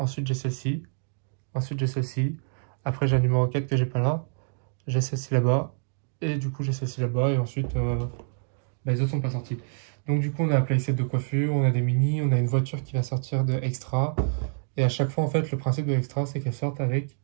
j'ai celle-ci. Ensuite, j'ai celle-ci. Après, j'ai la numéro 4 que j'ai pas là. J'ai celle-ci là-bas. Et du coup, j'ai celle-ci là-bas. Et ensuite, bah, les autres sont pas sortis. Donc, du coup, on a un playset de coiffure, on a des mini, on a une voiture qui va sortir de Extra. Et à chaque fois, en fait, le principe de Extra, c'est qu'elles sortent avec.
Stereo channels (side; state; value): left; silent; digital silence